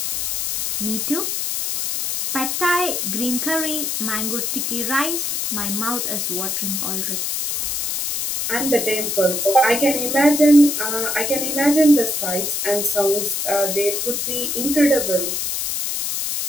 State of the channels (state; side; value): noise; left; hiss, 1 dB below the sound